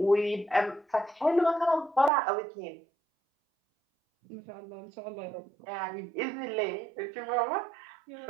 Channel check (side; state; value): left; drops out; at 2.1 s